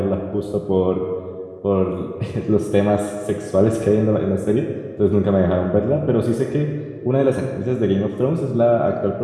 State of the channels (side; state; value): both; identical; correlation 1.00